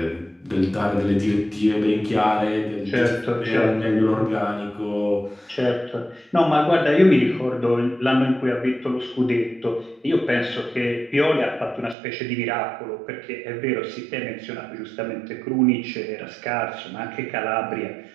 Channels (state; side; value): drops out; left; at 12.0 s